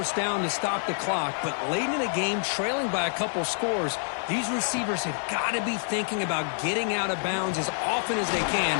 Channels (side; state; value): right; silent; digital silence